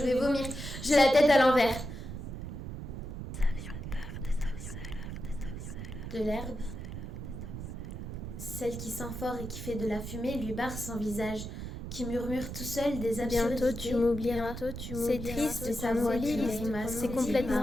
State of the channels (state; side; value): noise; right; rumble, 7 dB below the sound